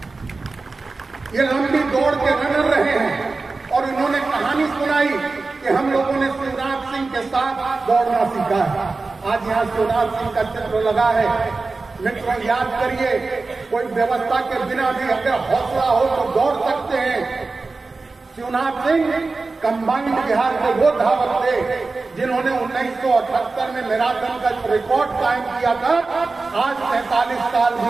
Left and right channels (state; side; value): quieter; left; 3.8 dB